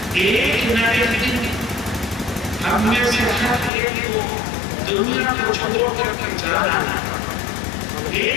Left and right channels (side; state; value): right; drops out; at 3.7 s